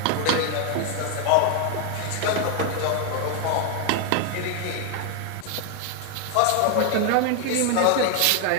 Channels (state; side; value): different; both; correlation 0.01